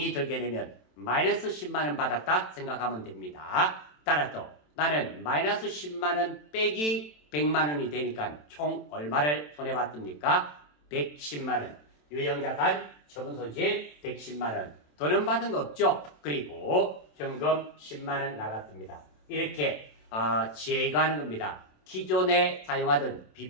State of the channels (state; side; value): late; right; 27 ms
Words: 들게 되면 마이너스 10만원 받았다 생각하면 됩니다. 따라서 나는 마이너스 10만원 빼기 100만원이 되니까 총 얼마를 손해봤습니까? 110만원. 유형자산, 처분손실 110만원. 돈은 받은 거 없죠? 그리고 현금 10만원 나갔습니다. 이렇게 제거하는 겁니다. 기존에 사용하던